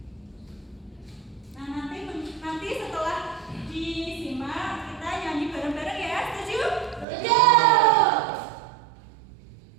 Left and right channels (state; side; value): drops out; left; at 7.1 s